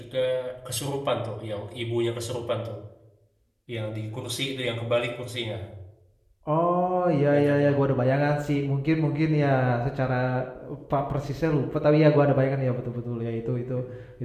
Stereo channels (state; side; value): identical; both; correlation 1.00